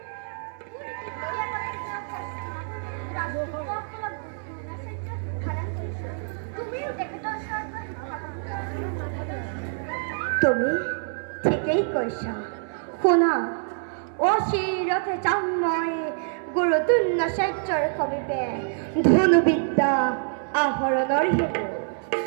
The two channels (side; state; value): left; silent; 61 dB below the other